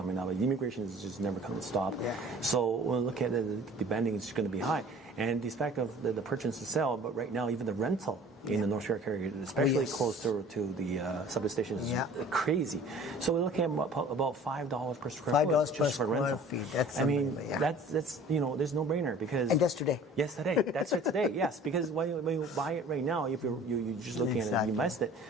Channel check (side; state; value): both; normal; correlation 0.47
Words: up. Immigration is just never going to stop. Yeah. So when we look at the bending, it's going to be high. And despite of the purchase and sell, but right now even the rental in the North York area, especially close to the subway station, is crazy. So we're looking at about $5 per square foot just for rental. That's there's no brainer because. And that's today. Yes, today. That's right today. Yes, because when you buy it right now, if you're just looking at it and you invest it,